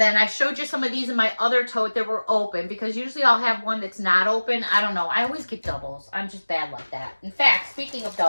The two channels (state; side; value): inverted; both; correlation -1.00